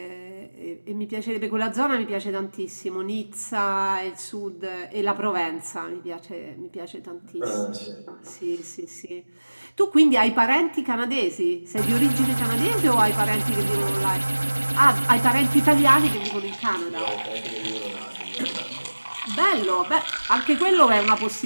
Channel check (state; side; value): inverted; both; correlation -1.00